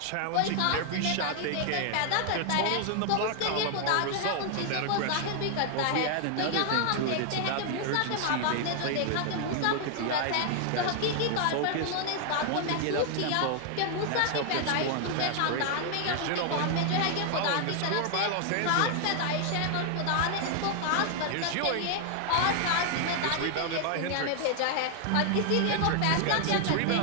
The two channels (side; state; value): both; different; correlation 0.00